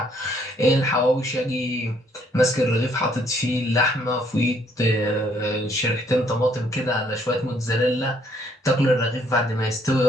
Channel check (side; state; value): both; normal; correlation 0.66